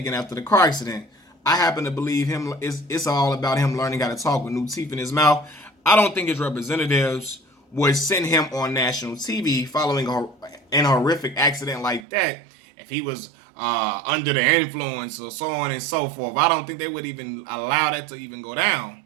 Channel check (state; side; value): drops out; left; at 12.1 s